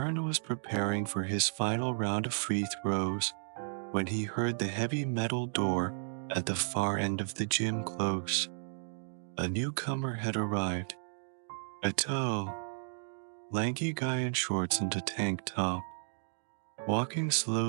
was preparing for his final round of free throws when he heard the heavy metal door at the far end of the gym close. A newcomer had arrived. A tall, lanky guy in shorts and a tank top, walking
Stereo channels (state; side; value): silent; left; digital silence